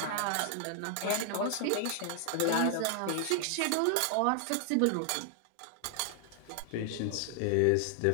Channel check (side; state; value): both; different; correlation 0.00